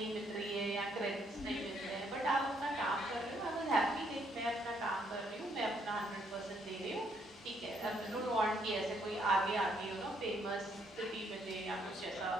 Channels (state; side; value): normal; both; correlation 0.71